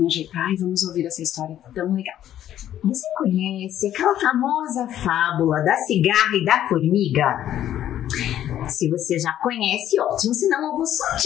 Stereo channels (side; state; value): right; quieter; 11.6 dB